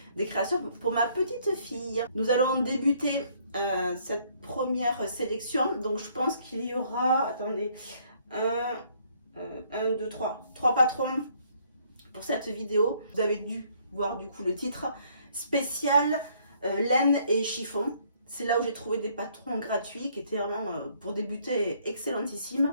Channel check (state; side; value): inverted; both; correlation -0.65